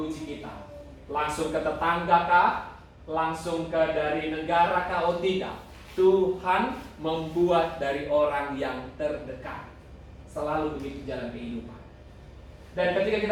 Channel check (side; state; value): both; identical; correlation 1.00